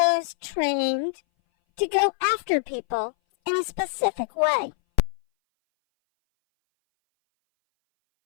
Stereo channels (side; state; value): right; silent; 59 dB below the other